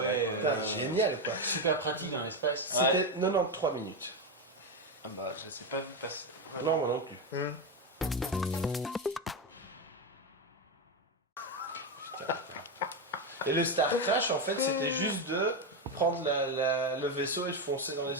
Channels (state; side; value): normal; both; correlation 0.10